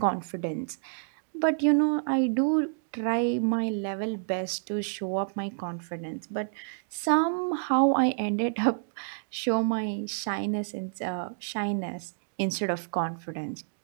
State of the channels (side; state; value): left; silent; digital silence